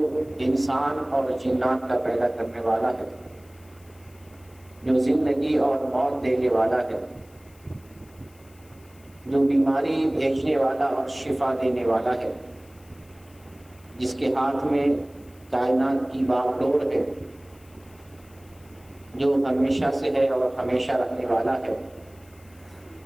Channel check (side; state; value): left; noise; hiss, 28 dB below the sound